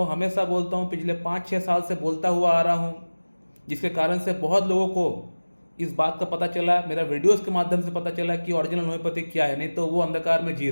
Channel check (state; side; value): inverted; both; correlation -1.00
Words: हमेशा बोलता हूँ, पिछले 5-6 साल से बोलता हुआ आ रहा हूँ, जिसके कारण से बहुत लोगों को इस बात का पता चला, मेरा वीडियोस के माध्यम से पता चला कि ओरिजिनल होम्योपैथी क्या है। नहीं तो वो अंधकार में जी